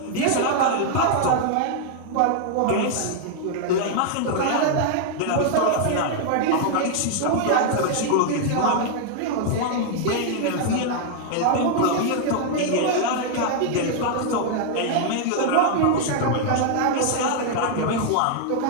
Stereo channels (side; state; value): both; different; correlation 0.00